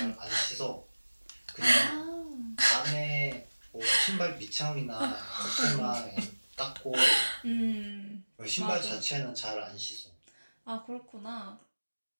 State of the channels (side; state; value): both; inverted; correlation -1.00